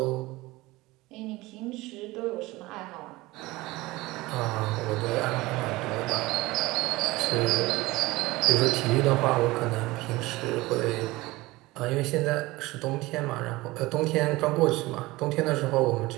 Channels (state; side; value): quieter; left; 20.2 dB